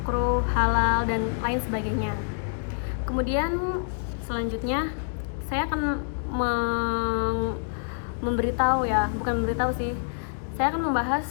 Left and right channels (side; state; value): right; silent; digital silence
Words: halal, dan lain sebagainya. Kemudian selanjutnya saya akan saya akan membahas